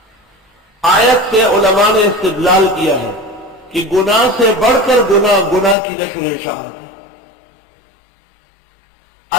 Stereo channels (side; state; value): right; drops out; at 5.8 s